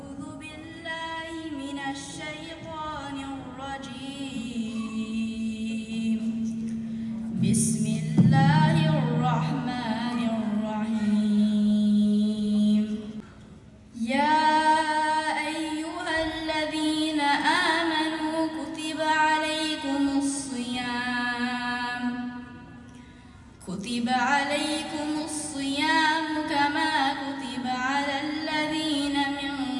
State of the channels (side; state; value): both; identical; correlation 1.00